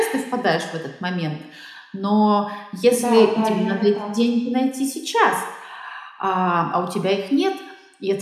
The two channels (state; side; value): identical; both; correlation 1.00